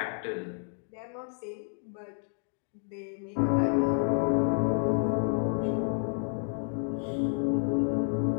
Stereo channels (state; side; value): silent; right; 58 dB below the other